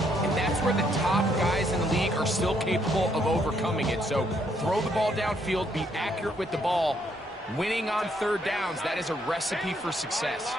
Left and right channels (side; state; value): both; normal; correlation 0.72